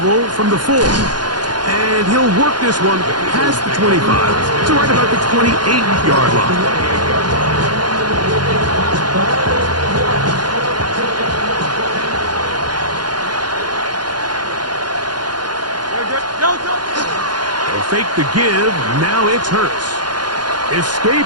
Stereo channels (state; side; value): late; left; 0.70 ms